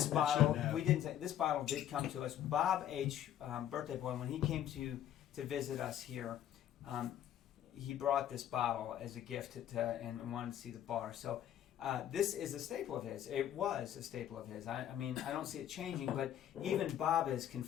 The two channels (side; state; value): right; quieter; 11.0 dB